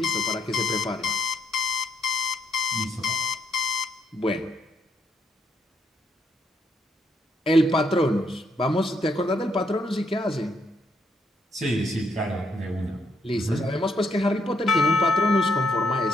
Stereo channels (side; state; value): both; normal; correlation 0.75